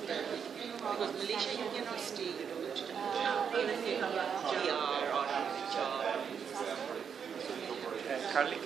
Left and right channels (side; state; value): left; quieter; 7.1 dB